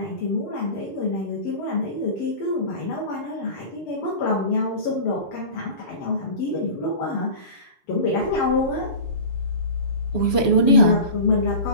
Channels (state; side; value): late; right; 6.9 ms